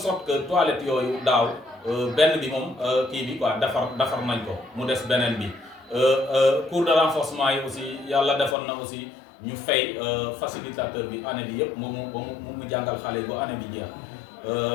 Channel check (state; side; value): drops out; right; at 8.6 s